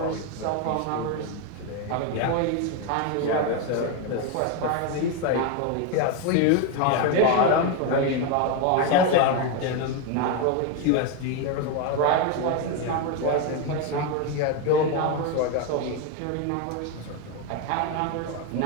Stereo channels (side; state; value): both; different; correlation 0.02